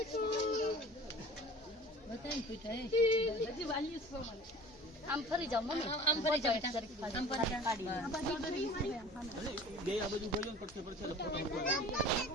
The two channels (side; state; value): left; noise; hum, 26 dB below the sound